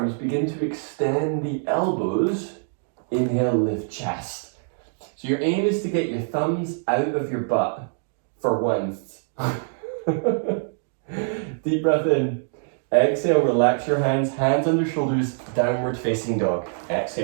begin to extend the elbows. Inhale, lift chest. So your aim is to get your thumbs out of your butt for once. Deep breath in. Exhale, relax your hands, hands under shoulders, downward facing dog.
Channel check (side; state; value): left; silent; digital silence